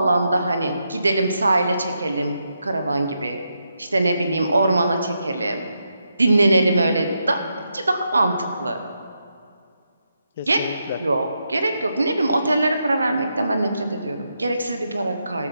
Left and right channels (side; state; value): both; inverted; correlation -0.83